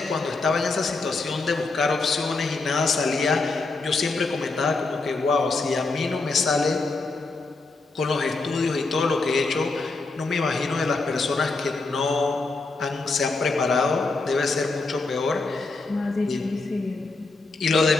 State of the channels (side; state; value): right; quieter; 3.7 dB